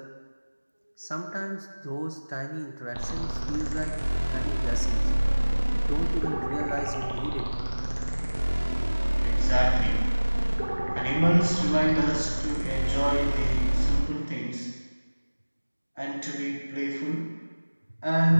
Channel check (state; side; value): inverted; both; correlation -1.00